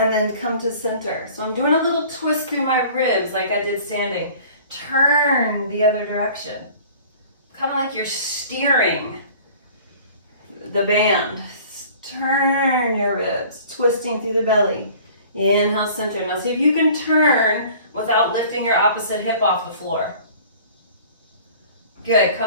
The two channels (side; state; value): both; inverted; correlation -0.48